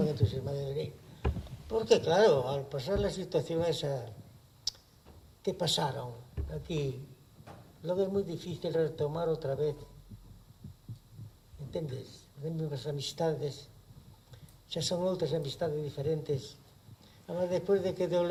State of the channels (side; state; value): both; identical; correlation 1.00